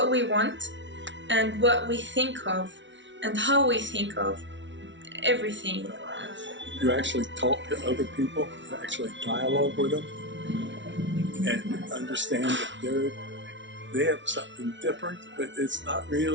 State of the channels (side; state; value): left; late; 0.54 ms